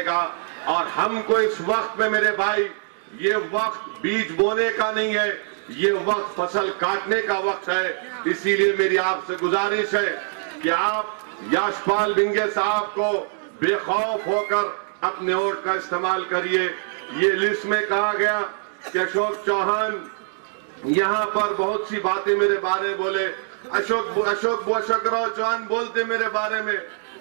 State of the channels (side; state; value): left; silent; digital silence